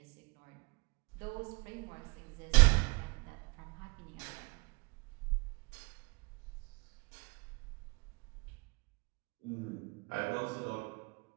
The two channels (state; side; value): quieter; left; 28.5 dB